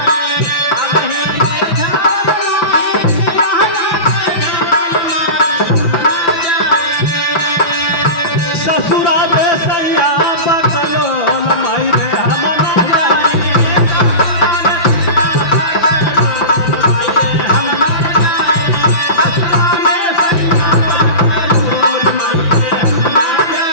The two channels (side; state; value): right; late; 5.9 ms